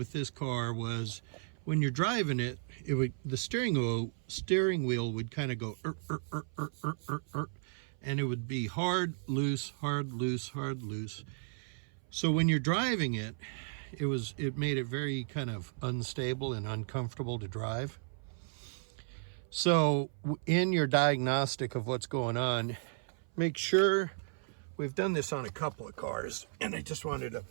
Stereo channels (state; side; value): silent; left; 55 dB below the other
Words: this car was when you're driving it, the steering wheel would kind of go and it would be hard, loose, hard, loose, hard, loose. So when you're driving it, it made it very kind of unstable and uncomfortable to drive. So in your diagnostic of what's going on, make sure, we've done this on a couple of cars, and I just wanted to